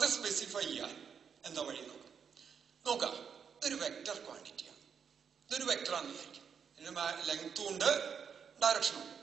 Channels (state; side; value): quieter; left; 6.9 dB